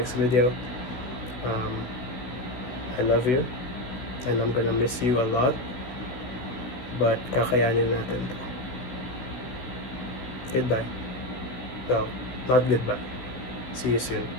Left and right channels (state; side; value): late; right; 16 ms